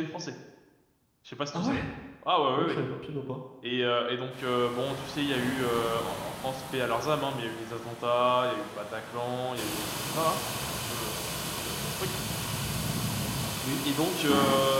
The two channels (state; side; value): identical; both; correlation 1.00